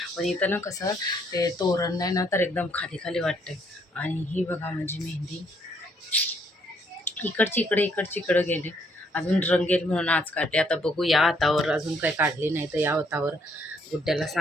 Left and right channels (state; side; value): normal; both; correlation 0.69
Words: पण इथं ना कसं ते तोरण नाही ना तर एकदम खाली खाली वाटते. आणि ही बघा माझी मेहंदी इकडची इकडे गेली. अजून रंगेल म्हणून आज काढले. आता बघू या हातावर अजून काही काढली नाही, तर या हातावर गुड्ड्याला